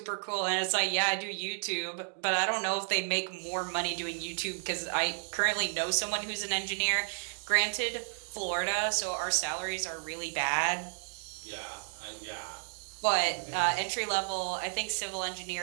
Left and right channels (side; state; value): left; silent; digital silence